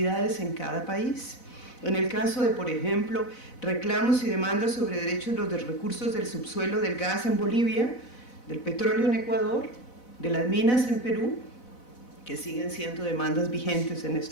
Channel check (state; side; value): late; right; 4.0 ms